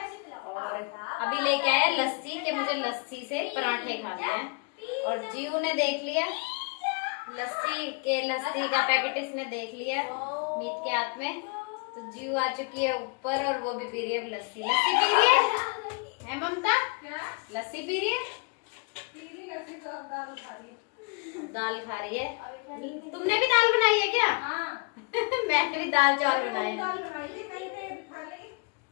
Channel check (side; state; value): right; quieter; 32.9 dB